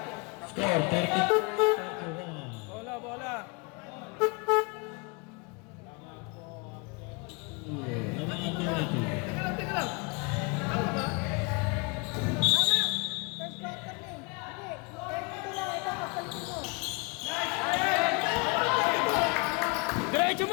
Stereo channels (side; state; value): right; quieter; 30.9 dB